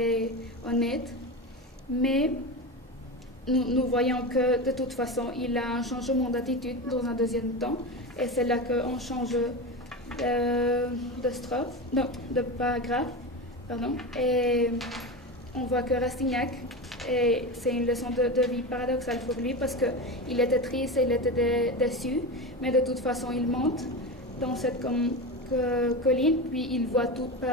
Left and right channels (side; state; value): both; normal; correlation 0.22